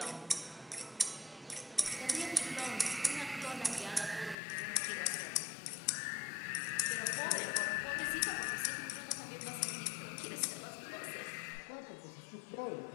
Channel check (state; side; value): drops out; right; at 4.4 s